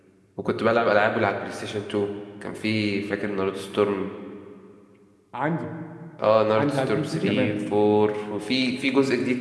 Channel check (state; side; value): identical; both; correlation 1.00